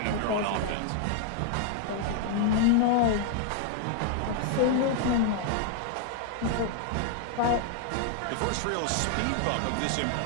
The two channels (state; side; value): different; both; correlation 0.00